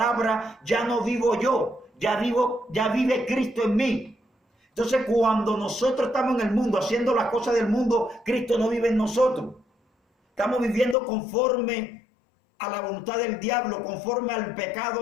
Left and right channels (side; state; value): right; drops out; at 11.0 s